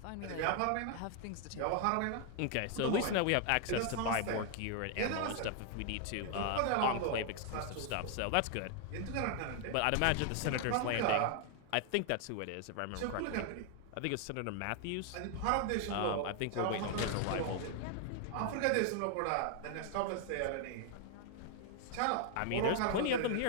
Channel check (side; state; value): both; different; correlation 0.00